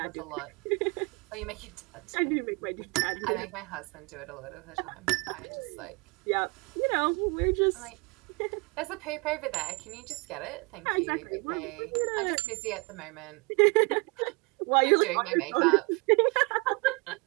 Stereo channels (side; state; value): left; quieter; 30.3 dB